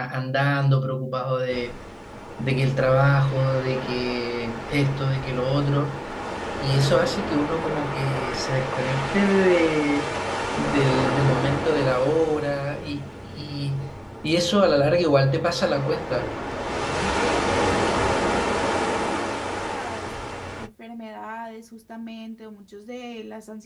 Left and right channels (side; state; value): both; identical; correlation 1.00